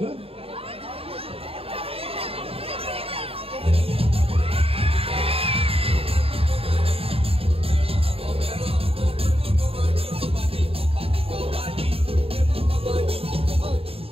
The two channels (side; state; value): left; late; 0.28 ms